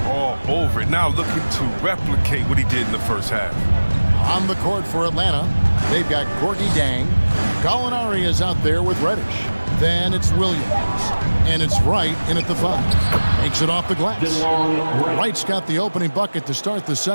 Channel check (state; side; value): inverted; both; correlation -1.00